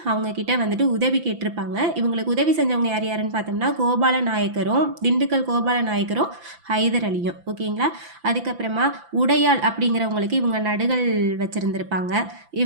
அவங்க கிட்ட வந்துட்டு உதவி கேட்டிருப்பாங்க. இவங்களுக்கு உதவி செஞ்சவங்க யார் யாருன்னு பார்த்தோம்னா கோபால நாயக்கரும், திண்டுக்கல் கோபால நாயக்கரும், ஹைதர் அலியும். ஓகேங்களா? அதுக்கப்புறமா உடையாள் அப்படிங்கிறவங்களுக்கு இவங்க நடுகள் வச்சுருந்துருப்பாங்க.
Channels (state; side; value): late; left; 5.9 ms